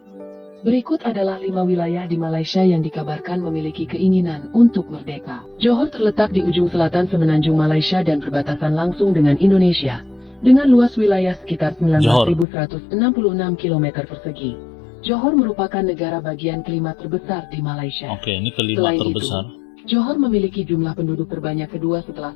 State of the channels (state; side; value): drops out; right; at 12.5 s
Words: Berikut adalah 5 wilayah di Malaysia yang dikabarkan memiliki keinginan untuk merdeka. Johor terletak di ujung selatan Semenanjung Malaysia dan berbatasan langsung dengan Indonesia, dengan luas wilayah sekitar 19.166 km persegi. Johor merupakan negara bagian kelima terbesar di Malaysia. Oke, ini kelima terbesar. Johor memiliki jumlah penduduk terbanyak kedua setelah